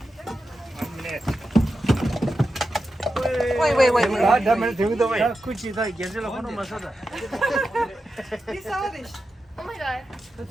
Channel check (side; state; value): both; normal; correlation 0.90